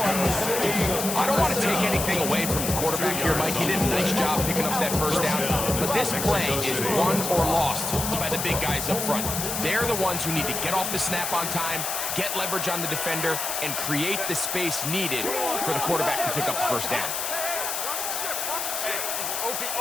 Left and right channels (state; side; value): noise; left; hiss, 2 dB below the sound